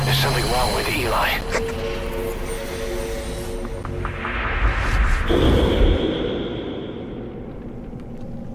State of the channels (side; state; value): both; identical; correlation 1.00